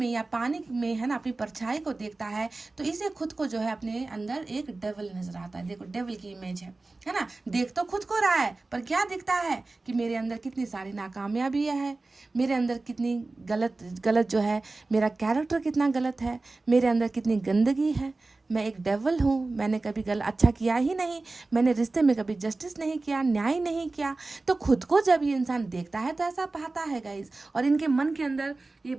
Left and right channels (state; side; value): quieter; left; 3.4 dB